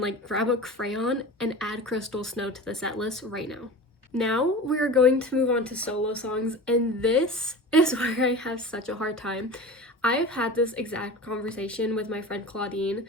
like grab a crayon and add Crystal Snow to the set list right now. Now we are going to move on to solo songs, and this is where I have such a hard time. I've had this exact conversation with my friend Claudine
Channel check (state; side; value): normal; both; correlation 0.34